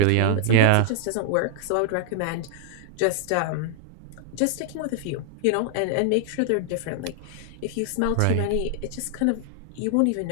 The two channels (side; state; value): both; different; correlation 0.00